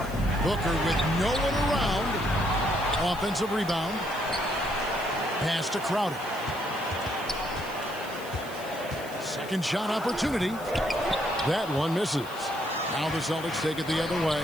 Booker with no one around. Offensive rebound. Pass to Crowder. Second shot opportunity. That one misses. Now the Celtics take it the other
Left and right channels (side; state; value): left; noise; hiss, 18 dB below the sound